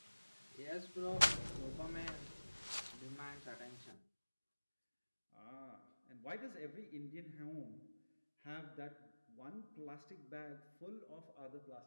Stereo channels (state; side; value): inverted; both; correlation -1.00